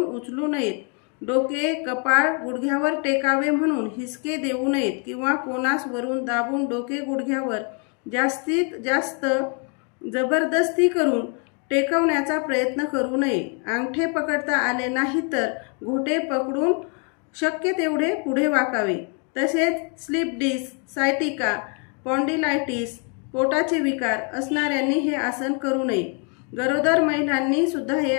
उचलू नयेत। डोके कपाळ गुडघ्यावर टेकावे म्हणून हिसके देऊ नयेत किंवा कोनास वरून दाबून डोके गुडघ्यावर जास्तीत जास्त जबरदस्ती करून टेकवण्याचा प्रयत्न करू नये। अंगठे पकडता आले नाही तर घोटे पकडून शक्य तेवढे पुढे वाकावे। तसेच स्लिप डिस्क, सायटिका, स्पॉन्डिलायटिस, पोटाचे विकार असणाऱ्यांनी हे आसन करू नये। गरोदर महिलांनी सुद्धा हे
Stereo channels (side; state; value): right; quieter; 38.1 dB